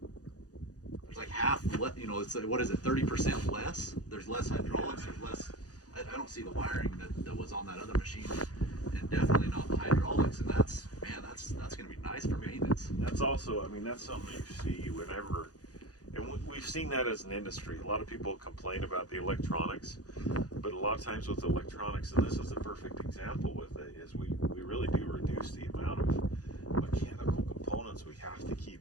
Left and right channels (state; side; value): late; right; 0.67 ms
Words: like half, you know, it's what is it, 30% less? There's less hydraulics. There's less. I don't see the wiring that was on that other machine, and definitely not the hydraulics. And that's going to be nice for maintenance. That's also, I mean, that's something you see whenever, and we've seen that as an industry. A lot of people complain about the electronics, but a lot of times with electronics, and this is a perfect example with it, is we really do reduce the amount of mechanical components we have to